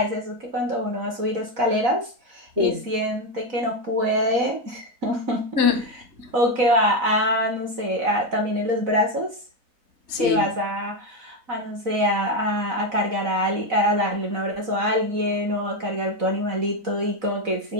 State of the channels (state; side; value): late; left; 4.0 ms